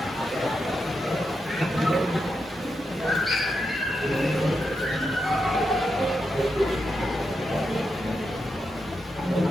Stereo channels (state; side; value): normal; both; correlation 0.86